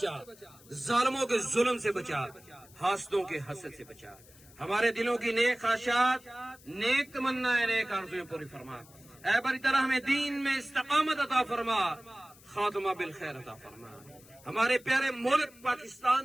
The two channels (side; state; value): left; noise; hiss, 24 dB below the sound